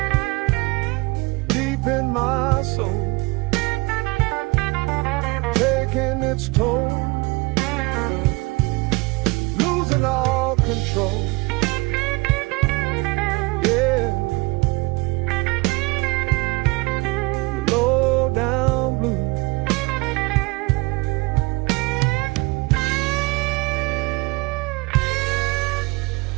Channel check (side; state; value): left; quieter; 25.1 dB